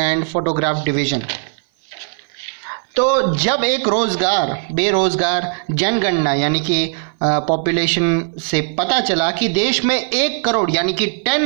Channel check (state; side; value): silent; left; 58 dB below the other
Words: photograph division. तो जब एक बेरोजगार जनगणना यानी कि पॉपुलेशन से पता चला कि देश में 1 करोड़ यानी कि 10